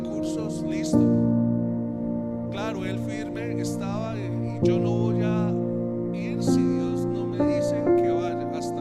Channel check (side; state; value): both; identical; correlation 1.00